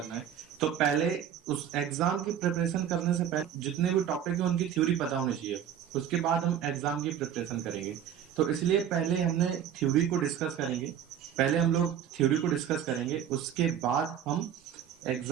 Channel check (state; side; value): quieter; left; 9.4 dB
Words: है तो पहले उस एग्जाम की प्रिपरेशन करने से पहले जितने भी टॉपिक है उनकी थ्योरी पता होनी चाहिए, उसके बाद हम एग्जाम की प्रिपरेशन करेंगे। तो इसलिए पहले हमने थ्योरी को डिस्कस करेंगे, पहले हम लोग थ्योरी को डिस्कस करेंगे, उसके बाद हम